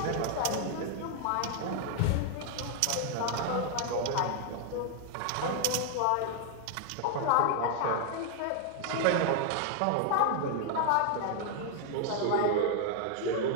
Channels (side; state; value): both; different; correlation 0.00